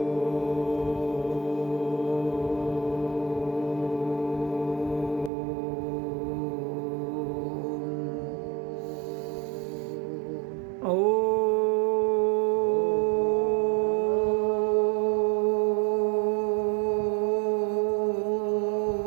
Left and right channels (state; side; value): drops out; left; at 5.3 s